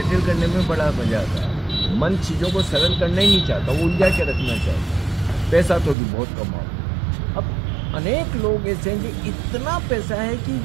करने में बड़ा मजा आता है। मन चीजों को सरल करना ही नहीं चाहता, वो उलझा के रखना चाहता। पैसा तो भी बहुत कमाओ। अब अनेक लोग ऐसे हैं कि इतना पैसा है कि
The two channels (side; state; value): left; drops out; at 6.0 s